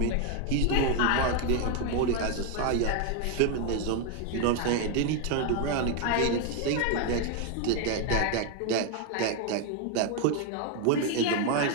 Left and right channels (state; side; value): different; both; correlation 0.01